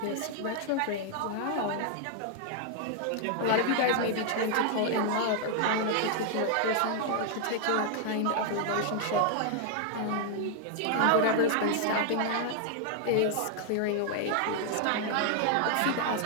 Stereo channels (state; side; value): different; both; correlation 0.00